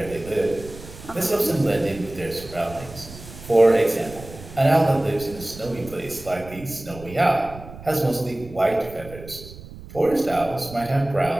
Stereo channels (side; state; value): right; noise; rumble, 16 dB below the sound